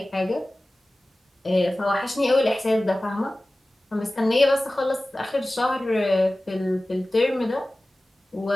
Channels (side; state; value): both; normal; correlation 0.97